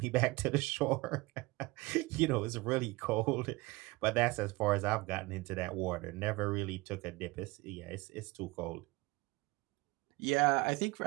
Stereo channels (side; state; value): left; quieter; 22.5 dB